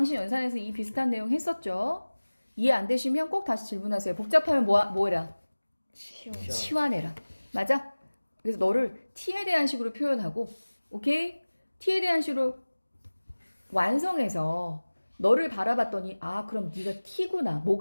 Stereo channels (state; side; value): inverted; both; correlation -1.00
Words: 연산에서 이 비슷한 내용 했었죠? 이해 안 되시면 꼭 다시 질문하세요. 복잡하면 뭐해라? 치워. 치환해라. 맞아? 그래서 너를 t에 대한 식으로 표현하고, 오케이? t에 대한 식으로 완성해서 너를 바라봤더니, 아, 그럼 네가 t구나.